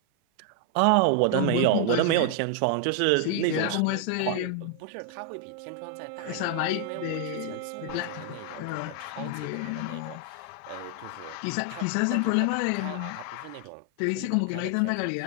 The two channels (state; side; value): different; both; correlation 0.00